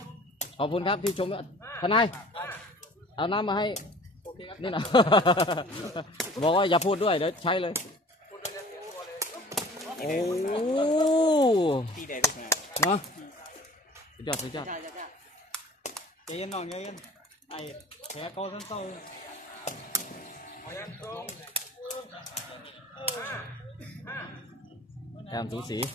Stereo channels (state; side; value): normal; both; correlation 0.46